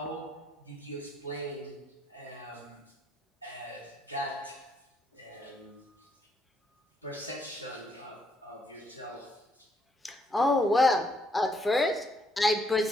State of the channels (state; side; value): normal; both; correlation 0.72